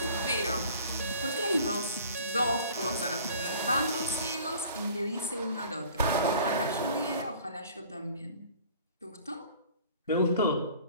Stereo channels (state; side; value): inverted; both; correlation -0.49